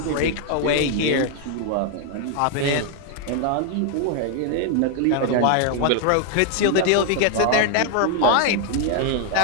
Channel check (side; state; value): both; different; correlation 0.01